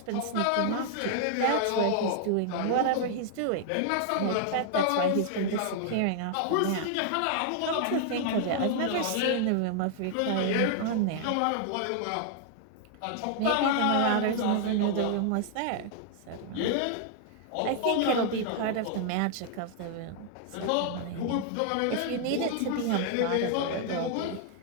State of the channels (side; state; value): both; different; correlation 0.00